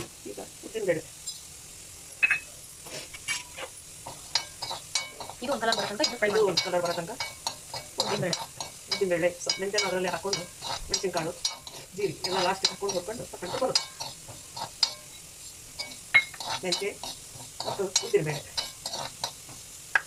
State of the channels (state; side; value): identical; both; correlation 1.00